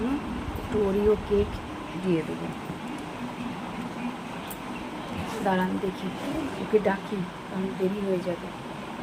একটু ওরিও কেক দিয়ে দেবো। দাঁড়ান দেখি, ওকে ডাকি, কারণ দেরি হয়ে যাবে।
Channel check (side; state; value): both; identical; correlation 1.00